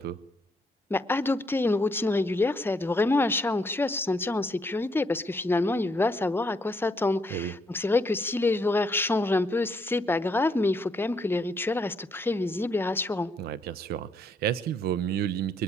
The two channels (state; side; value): normal; both; correlation 0.72